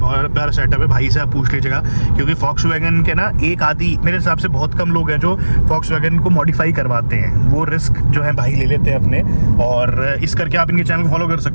प्यारा सेटअप है। भाई से आप पूछ लीजिएगा, क्योंकि फॉक्सवैगन के ना एक आधी मेरे हिसाब से बहुत कम लोग हैं जो फॉक्सवैगन को मॉडिफाई करवाते हैं, वो रिस्क जो है भाई ले लेते हैं अपने। और इस करके आप इनके चैनल को फॉलो कर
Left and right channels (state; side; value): inverted; both; correlation -1.00